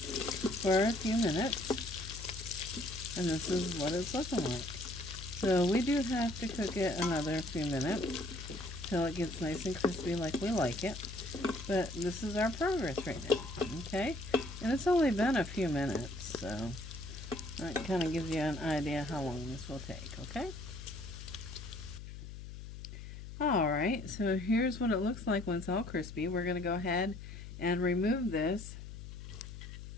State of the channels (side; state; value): left; noise; hum, 11 dB below the sound